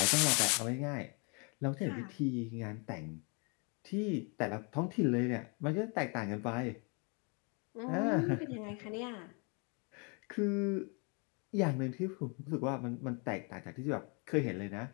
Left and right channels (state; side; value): quieter; right; 34.1 dB